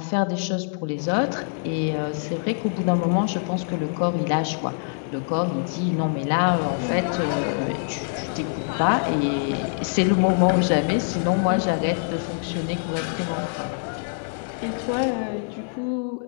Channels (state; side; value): silent; right; digital silence